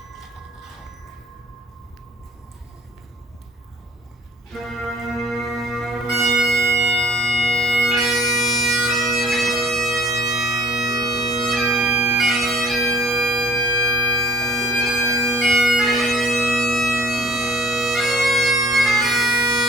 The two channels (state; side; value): normal; both; correlation 0.54